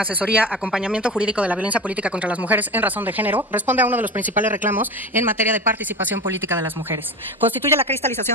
acompañamiento jurídico de la violencia política contra las mujeres en razón de género responde a uno de los principales reclamos en materia de participación política de las mujeres. Constituye la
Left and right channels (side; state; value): both; normal; correlation 0.28